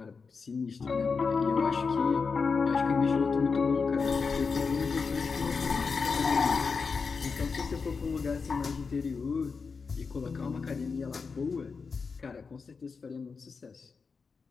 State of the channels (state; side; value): quieter; right; 5.0 dB